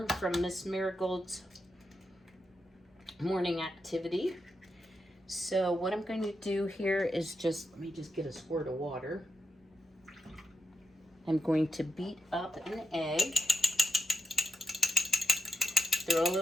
from Miss Marigold's morning activity. So what I'm going to do here is let me just get a squirt of water. I'm going to beat up an egg. Throw a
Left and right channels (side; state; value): both; normal; correlation 0.85